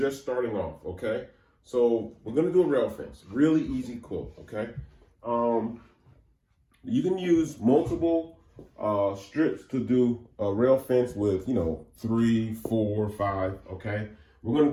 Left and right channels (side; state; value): both; identical; correlation 1.00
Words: starting off. Okay, so we're going to do a rail fence. Really easy quilt. Okay. You can use multiple strips to do a rail fence with, 3, 4, 5. Okay, we're gonna